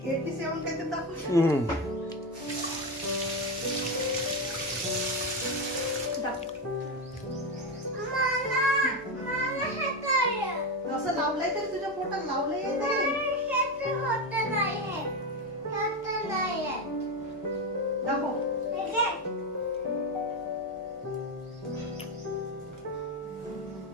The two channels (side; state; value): both; normal; correlation 0.13